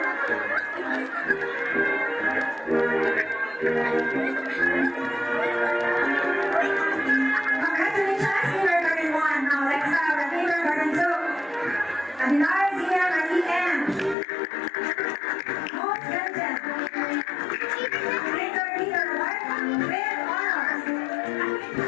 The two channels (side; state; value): right; drops out; at 14.2 s